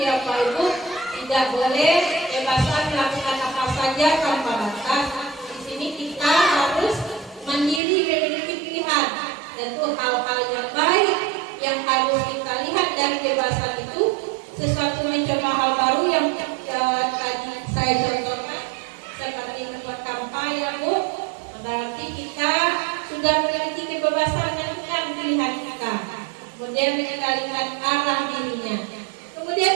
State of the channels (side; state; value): left; drops out; at 7.8 s